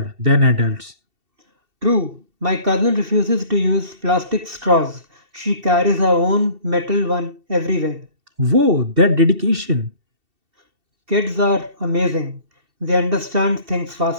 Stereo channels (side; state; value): left; late; 2.7 ms